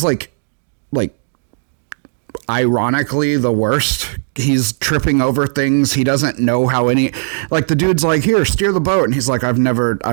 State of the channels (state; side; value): silent; left; digital silence